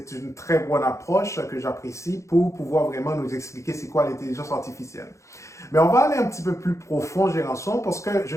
une très bonne approche que j'apprécie pour pouvoir vraiment nous expliquer c'est quoi l'intelligence artificielle. Mais on va aller un petit peu plus profond, Géranson, parce que je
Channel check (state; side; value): late; right; 0.14 ms